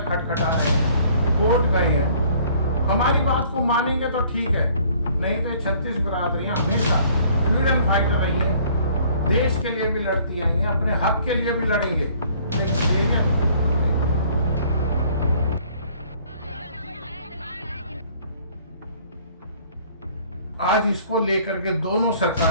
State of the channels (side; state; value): both; inverted; correlation -0.57